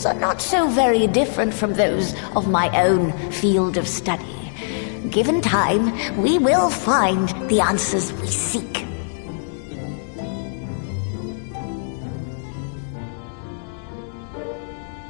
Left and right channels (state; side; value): silent; right; digital silence